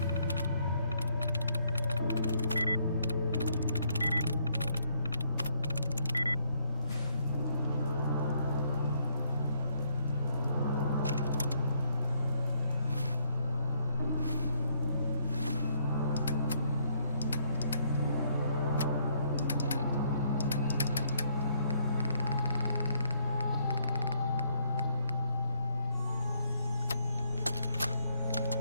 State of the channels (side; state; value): both; inverted; correlation -0.70